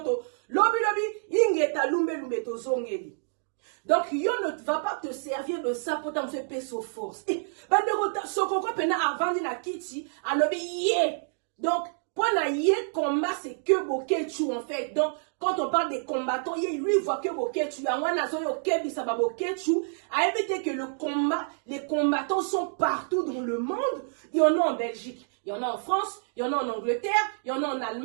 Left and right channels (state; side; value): silent; left; digital silence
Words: Lobi ingeta lumbe to zongeli. Donc yo ne va pas te servir de ça pour t'en faire peso force. Bande rota sokoko pena avant na kiti, alobi yé. Donc pour naïe combat c'est que bokechu en fait. Donc quand on parle des combattants, lui voit que bokechu. En wanazo yo kebi ça va bokechu. A éviter que le combat, les combattants sont partout dans le monde. Il y en a en Belgique, il y en a en France, il y en a en Angleterre, il y en a en